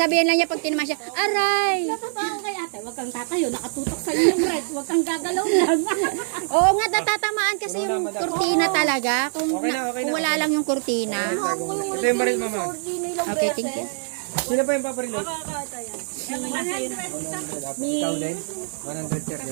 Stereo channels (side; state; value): left; silent; digital silence